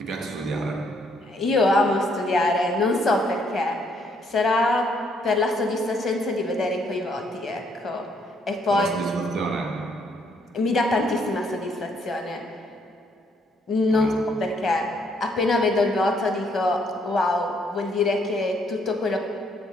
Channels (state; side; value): normal; both; correlation 0.70